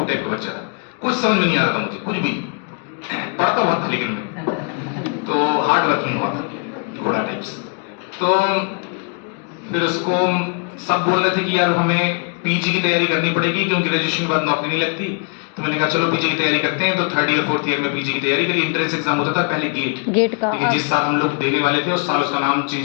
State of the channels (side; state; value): right; quieter; 37.9 dB